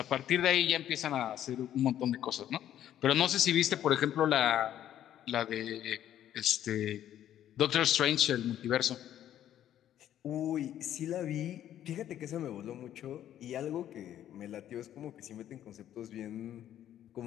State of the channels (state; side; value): quieter; right; 11.3 dB